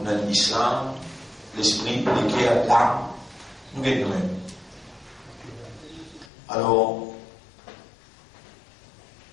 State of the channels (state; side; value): drops out; right; at 6.3 s